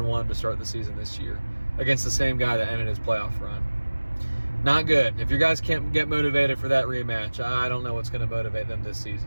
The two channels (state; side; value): inverted; both; correlation -1.00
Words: to start the season this year against the same guy that ended his playoff run. Not good. If you guys can't get motivated for that rematch, I don't know what's going to motivate them this